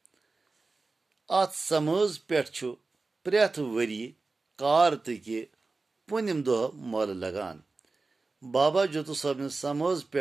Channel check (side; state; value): left; quieter; 3.7 dB